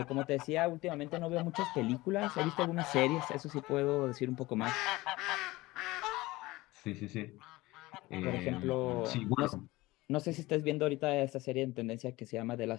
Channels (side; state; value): right; quieter; 19.9 dB